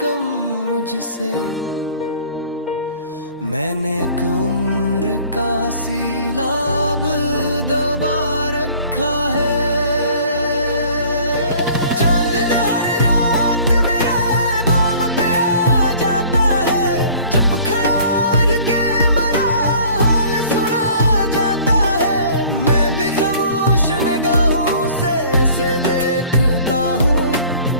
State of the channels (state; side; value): inverted; both; correlation -0.50